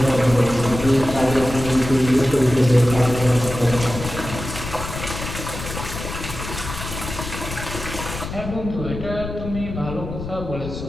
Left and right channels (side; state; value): left; noise; rumble, 8 dB below the sound